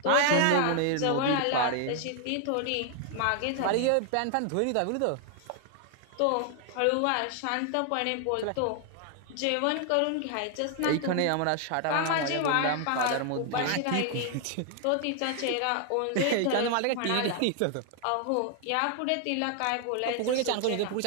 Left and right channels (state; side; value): different; both; correlation 0.00